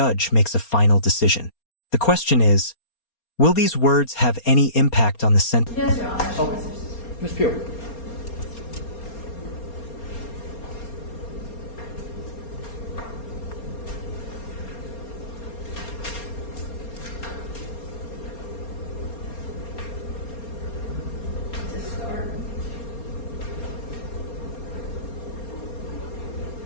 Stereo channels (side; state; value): right; late; 4.3 ms